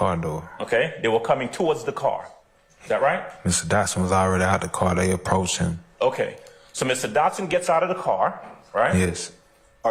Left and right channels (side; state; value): both; identical; correlation 1.00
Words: door. Okay? They were coming towards the car. Is that right? Mr. Dotson was already out the car. They approached him. Okay. So Mr. Dotson gets out of the car, right? Yes.